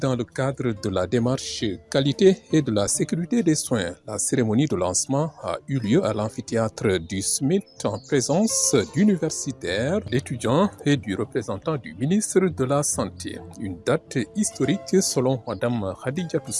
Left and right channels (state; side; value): identical; both; correlation 1.00